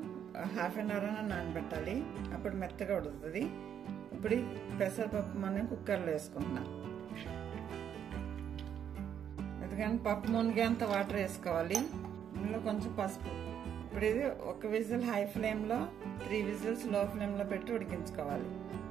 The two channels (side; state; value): left; quieter; 8.9 dB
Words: హాఫ్ అన్ అవర్ అయినా నానబెట్టాలి, అప్పుడు మెత్తగా ఉడుకుతుంది. ఇప్పుడు పెసరపప్పు మనం కుక్కర్లో వేసుకుంటున్నాం. ఎందుకంటే పప్పు మునిగేంత వాటర్ వేసుకోవాలి. ఇందులో కొంచెం పసుపు. ఇప్పుడు ఇది ఒక విజిల్ హై ఫ్లేమ్లో, 3 విజిల్స్ లో ఫ్లేమ్లో పెట్టి ఉడికించుకోవాలి.